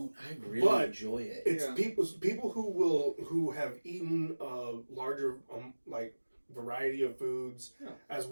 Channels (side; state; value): both; inverted; correlation -1.00